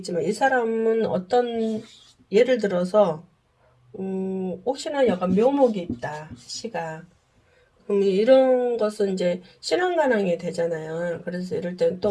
이 사람은 어떤 예를 들어서 혹시나 약간 묘목이 있다 시가 그럼 이런 것은 이제 신앙관항이 되잖아요. 그래서 이럴 때는 또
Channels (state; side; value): identical; both; correlation 1.00